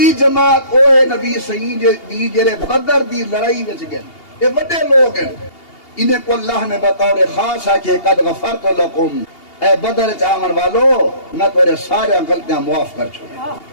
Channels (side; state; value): right; late; 2.8 ms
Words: جماعت او ہے نبی سنگھ دی جڑے بدر دی لڑائی وچ گئے، یہ بڑے لوگ ہیں. انہیں کو اللہ نے بطور خاص ہے کہ قد غفرت لکم، اے بدر چاون والو میں تیرے سارے غلطیاں معاف کر چھوڑے.